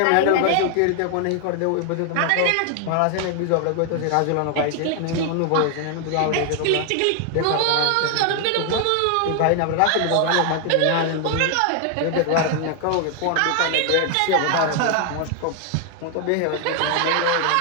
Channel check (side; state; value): both; different; correlation 0.00